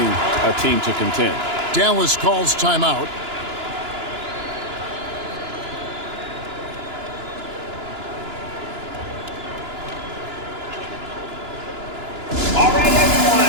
a team to contend. Dallas calls timeout. All right, everyone,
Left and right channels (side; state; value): left; late; 2.9 ms